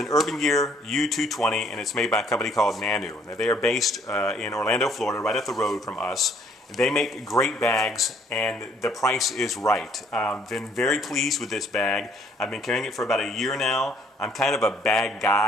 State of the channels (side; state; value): both; normal; correlation 0.62